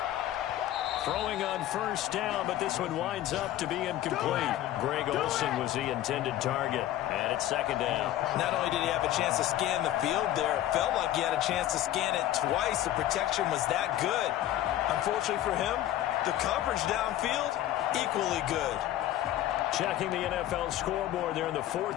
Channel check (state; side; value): quieter; right; 13.4 dB